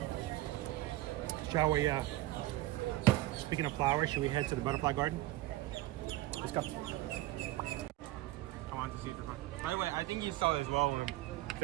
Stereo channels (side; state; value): left; quieter; 17.2 dB